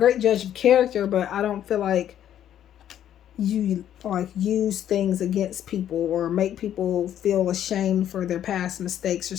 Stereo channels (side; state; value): right; quieter; 10.7 dB